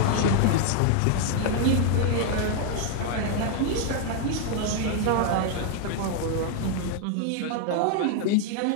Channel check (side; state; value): both; different; correlation 0.00